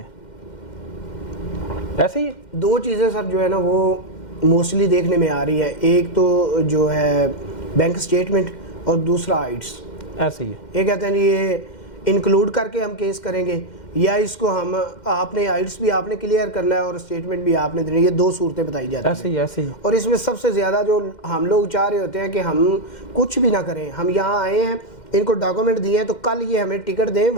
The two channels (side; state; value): right; late; 2.1 ms